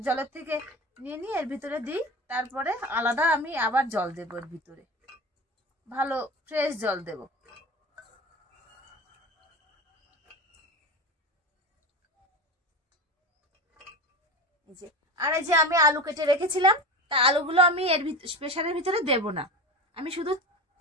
জলের থেকে নিয়ে নিয়ে এর ভিতরে দিই, তারপরে আলাদা আমি আবার জল দেবো এর ভিতরে, ভালো ফ্রেশ জল দেব। এই যে আর এই যে আমি আলু কেটে রেখেছিলাম, তা আলুগুলো আমি এর প্রেসারের ভিতরে দেব না, আমি শুধু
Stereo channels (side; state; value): both; normal; correlation 0.28